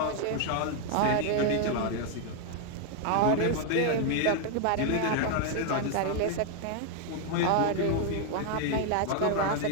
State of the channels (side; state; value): both; different; correlation 0.00